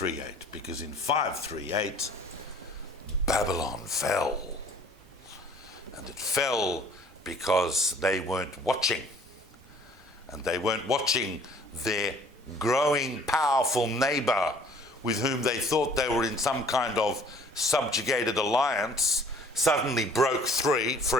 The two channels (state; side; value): normal; both; correlation 0.54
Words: because in 538, Babylon fell. And it fell because they weren't watching. And they weren't watching their growing, powerful neighbor with whom they thought they were in some kind of subjugated alliance suddenly broke free.